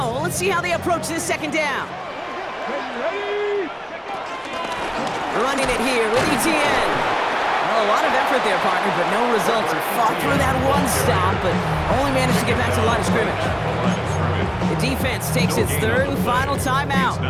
Let's see how they approach this 2nd down. Running it here with ETN. Well, a lot of effort there, partner, but no results. He fought through that 1 stop, but only managed to get back to the line of scrimmage. The defense takes its 3rd and final timeout.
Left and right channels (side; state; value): both; identical; correlation 1.00